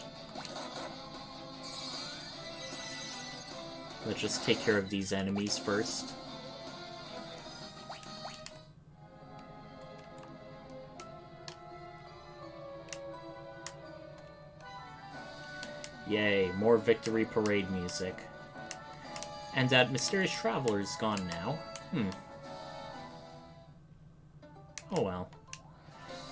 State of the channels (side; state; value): both; identical; correlation 1.00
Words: Let's just take care of these enemies first. Yay, more victory parade music. And that mysterious traveler is gone now. Oh well.